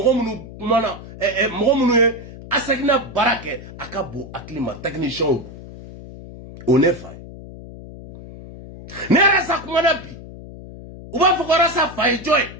minnu ye Asegina baara kɛ a ka bon hakili ma techniciens o ne fa ye ne yɛrɛ sa kumana bi u b'a fɔ ko Arasa fa ye jɔn ye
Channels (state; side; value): noise; left; hum, 15 dB below the sound